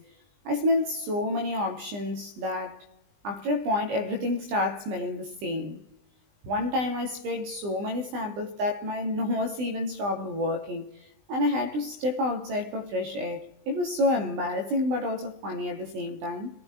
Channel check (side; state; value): left; late; 20 ms